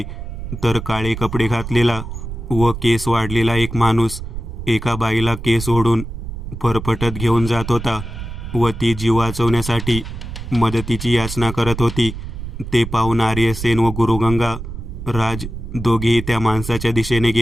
तर काळे कपडे घातलेला व केस वाढलेला एक माणूस एका बाईला केस ओढून फरफटत घेऊन जात होता व ती जीव वाचवण्यासाठी मदतीची याचना करत होती. ते पाहून आर्यसेन व गुरुगंगा राज दोघेही त्या माणसाच्या दिशेने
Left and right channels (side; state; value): right; noise; rumble, 8 dB below the sound